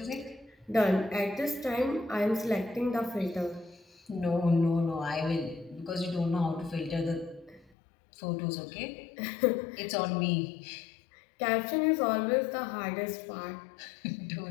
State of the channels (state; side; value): drops out; right; at 7.8 s